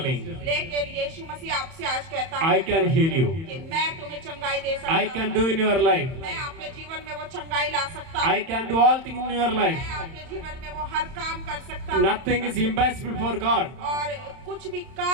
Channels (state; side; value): late; left; 31 ms